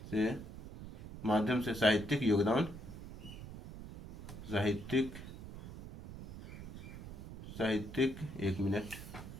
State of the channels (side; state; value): right; noise; rumble, 11 dB below the sound